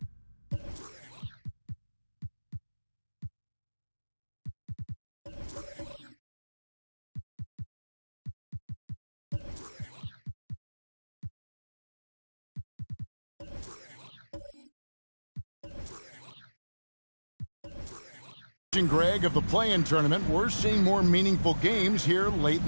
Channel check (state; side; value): inverted; both; correlation -1.00